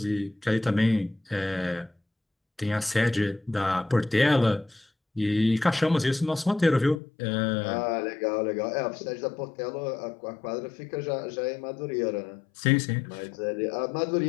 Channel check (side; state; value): right; drops out; at 7.0 s